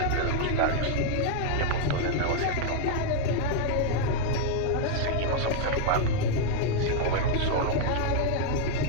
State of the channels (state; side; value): different; both; correlation 0.00